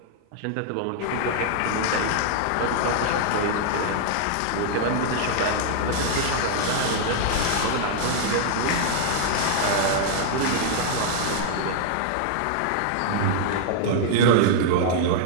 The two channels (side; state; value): both; different; correlation -0.01